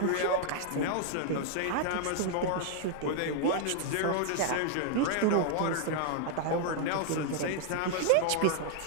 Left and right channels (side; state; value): both; different; correlation 0.00